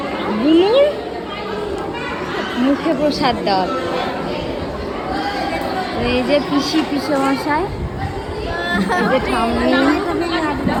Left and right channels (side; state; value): both; identical; correlation 1.00